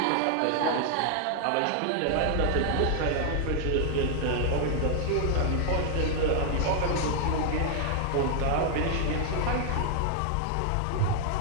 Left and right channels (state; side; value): different; both; correlation 0.00